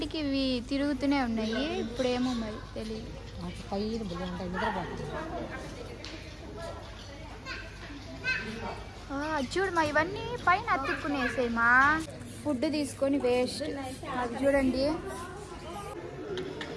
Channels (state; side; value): identical; both; correlation 1.00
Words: ఇవి తిరుగుతూనే ఉన్నాయి, ఇప్పుడేమో మరి తెలియదు. చూడు మా ఇవన్నీ పైన అతుక్కునేసాయి మా. ఫుడ్ తీసుకొని వేస్ట్. అది చూడండి,